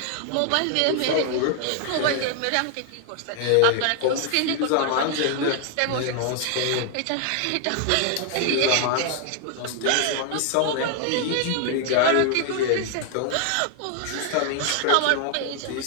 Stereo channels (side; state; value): both; different; correlation 0.00